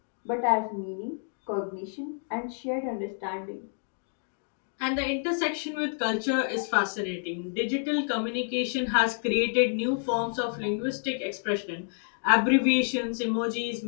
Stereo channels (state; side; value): silent; right; 59 dB below the other